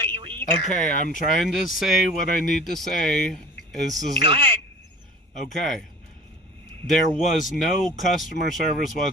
you either. Okay, I'm trying to say what I need to say. Go ahead. Okay. There was no customer service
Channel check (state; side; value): normal; both; correlation 0.42